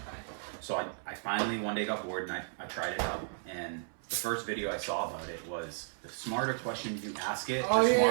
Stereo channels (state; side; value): silent; left; 55 dB below the other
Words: So I finally one day got bored and I tried it out. And the first video I saw about it was the smarter questions you ask it, the